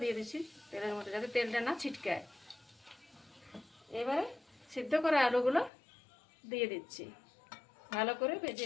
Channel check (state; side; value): drops out; right; at 5.7 s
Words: দিয়ে দিচ্ছি তেলের মধ্যে, যাতে তেলটা না ছিটকায়। এবারে সিদ্ধ করা আলুগুলো দিয়ে দিচ্ছি, ভালো করে